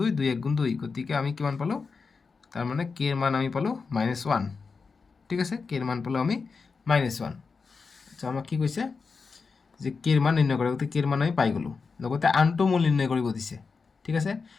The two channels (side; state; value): right; quieter; 4.8 dB